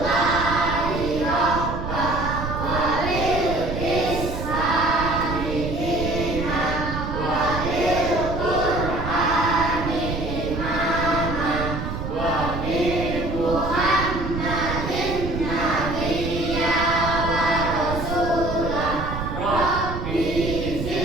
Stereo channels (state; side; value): noise; right; rumble, 5 dB below the sound